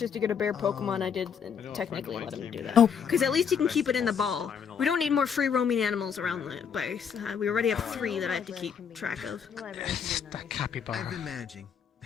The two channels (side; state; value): right; quieter; 7.1 dB